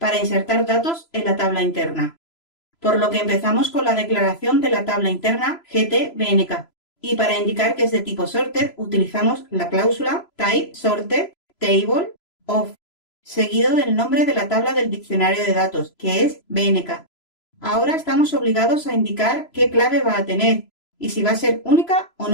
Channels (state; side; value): late; right; 3.0 ms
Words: insertar datos en la tabla interna. Por lo que empezamos con la declaración de la tabla interna GT-BNK. Y para indicar que es de tipo sorted, utilizamos la cláusula type sorted table of, seguido del nombre de la tabla del diccionario de datos, que es BNK. Ahora estamos obligados a indicar qué clave va a tener y si va a ser única o